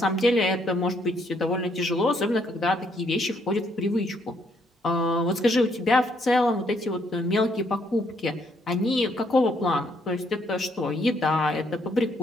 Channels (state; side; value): normal; both; correlation 0.71